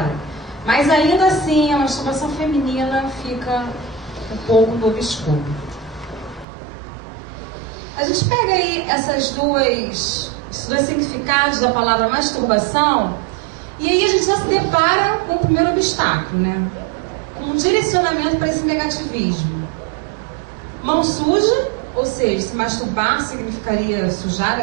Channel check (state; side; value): drops out; left; at 6.5 s